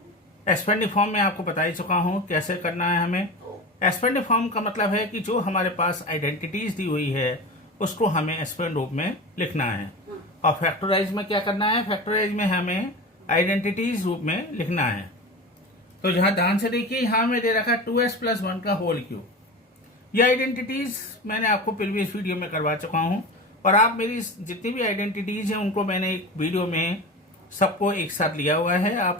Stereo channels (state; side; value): normal; both; correlation 0.29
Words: Expanding form में आपको बता ही चुका हूँ कैसे करना है हमें. Expanding form का मतलब है कि जो हमारे पास आइडेंटिटीज दी हुई है उसको हमें एक्सपेंड रूप में लिखना है. और फैक्टराइज में क्या करना है, फैक्टराइज में हमें आइडेंटिटीज रूप में लिखना है. तो जहां ध्यान से देखिए, यहां में दे रखा 2s + 1 का होल क्यूब. ये आइडेंटिटीज मैंने आपको प्रीवियस वीडियो में करवा चुका हूं और आप मेरी जितनी भी आइडेंटिटीज हैं उनको मैंने एक वीडियो में सबको एक साथ लिया हुआ है,